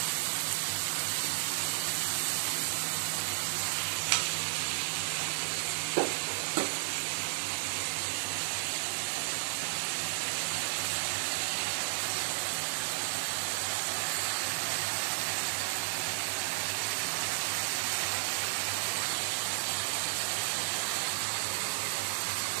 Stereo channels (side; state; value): left; silent; digital silence